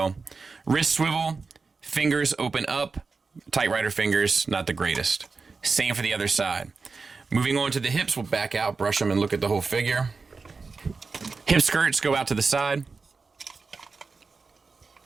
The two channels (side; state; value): left; quieter; 4.5 dB